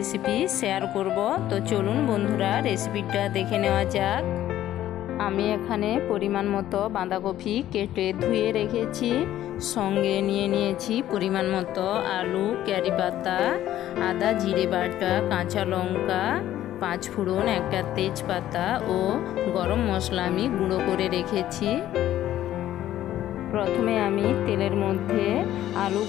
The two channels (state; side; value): quieter; right; 12.9 dB